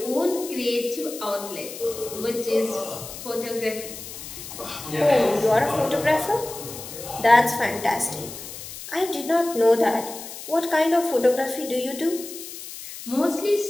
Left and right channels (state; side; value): noise; left; hiss, 12 dB below the sound